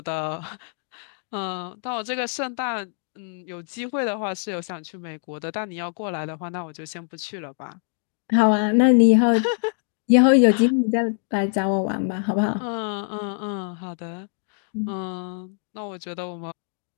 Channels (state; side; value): silent; right; 60 dB below the other